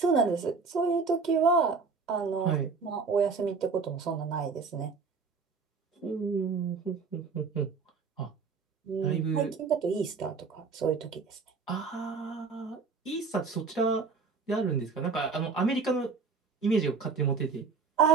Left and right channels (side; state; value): left; quieter; 4.9 dB